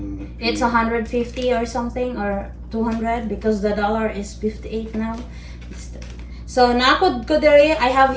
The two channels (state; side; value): identical; both; correlation 1.00